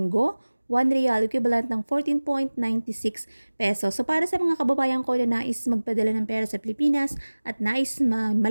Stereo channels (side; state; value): both; inverted; correlation -1.00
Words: 1 real equivalent ng 14.96 pesos. So para sa mga kababayan ko na nais magpadala ng pera sa Pilipinas at nais